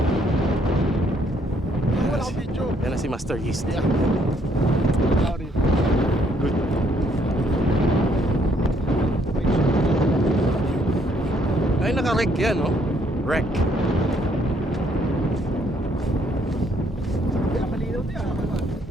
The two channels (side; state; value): both; normal; correlation 0.68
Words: Wala akong video. Yan na si Master East. Yeah. Sorry. Good. Ay, naka-wreck yan, no? Wreck. Kaya malinaw niya.